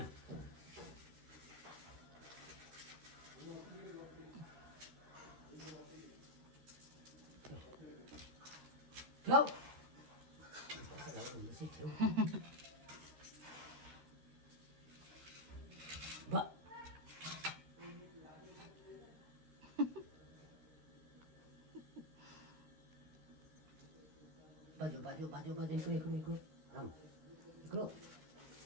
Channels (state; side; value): late; left; 13 ms